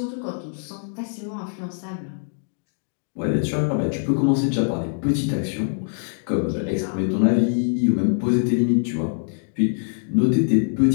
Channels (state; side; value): silent; right; digital silence